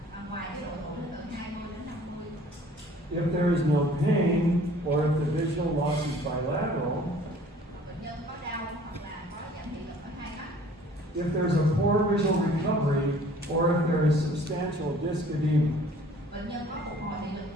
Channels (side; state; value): both; normal; correlation 0.53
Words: ngoài cái độ tuổi từ 20 đến 50. If there is no pain, or if the visual loss is bilateral, Bệnh nhân có đau hoặc là có giảm thị lực ở hai mắt. if there's a poor visual recovery, or if there is substantial disc edema. Bệnh nhân có phục hồi thị lực